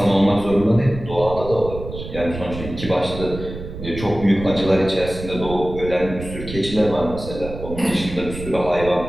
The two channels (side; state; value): right; noise; rumble, 10 dB below the sound